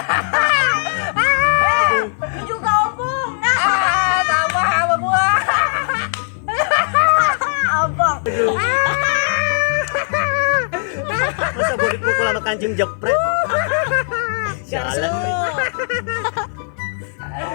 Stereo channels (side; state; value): right; silent; 56 dB below the other